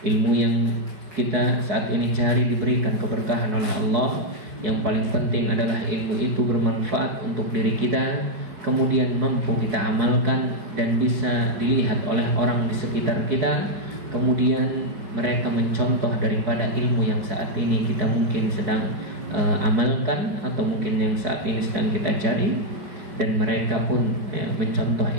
ilmu yang kita saat ini cari diberikan keberkahan oleh Allah. Yang paling penting adalah ilmu itu bermanfaat untuk diri kita, kemudian mampu kita amalkan dan bisa dilihat oleh orang di sekitar kita. Kemudian mereka mencontoh daripada ilmu yang saat ini kita mungkin sedang amalkan, atau mungkin yang saat ini sedang kita cari, dan mereka pun mencontoh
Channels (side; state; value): left; late; 4.7 ms